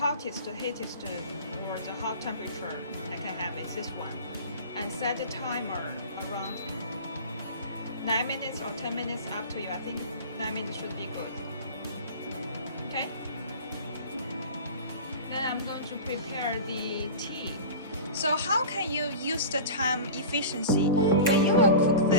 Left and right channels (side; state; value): both; inverted; correlation -0.34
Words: or the hot temperature I can have is this one, and set the timer around 9 minutes or 10 minutes, up to you. I think 9 minutes should be good. Okay. Then I'm going to prepare the tea. So how can you use the time efficiency? When you will cook